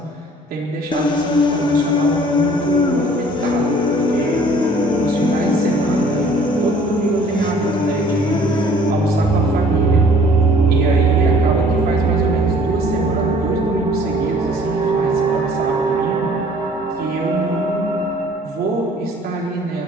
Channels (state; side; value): normal; both; correlation 0.54